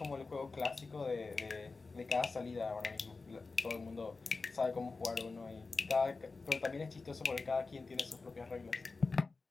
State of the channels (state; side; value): quieter; right; 4.0 dB